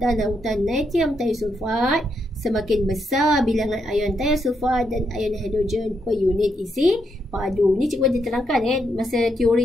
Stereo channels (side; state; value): both; normal; correlation 0.79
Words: lautan natrium thiosulfat, semakin besar bilangan ion thiosulfat dan ion hidrogen per unit isi padu. Ini cikgu ada terangkan masa